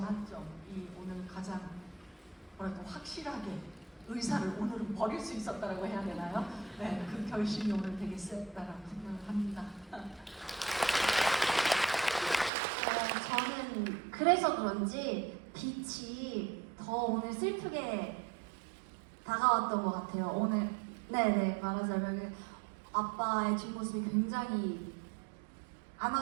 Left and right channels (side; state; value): left; drops out; at 12.5 s